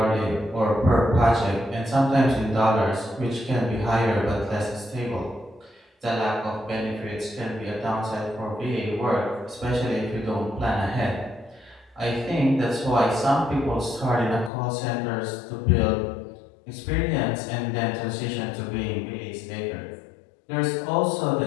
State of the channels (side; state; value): right; drops out; at 14.5 s